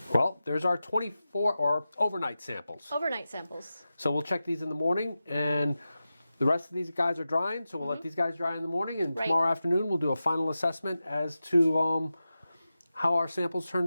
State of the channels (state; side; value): inverted; both; correlation -0.93